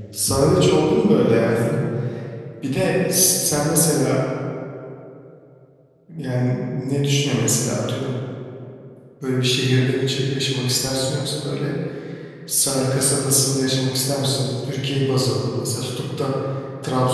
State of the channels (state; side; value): identical; both; correlation 1.00